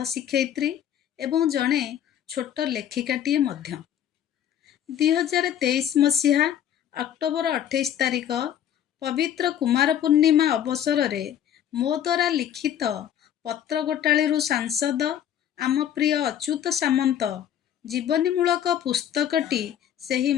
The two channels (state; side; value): quieter; right; 10.2 dB